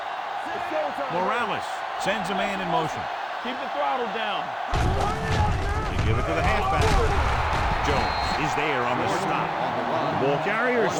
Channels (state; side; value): identical; both; correlation 1.00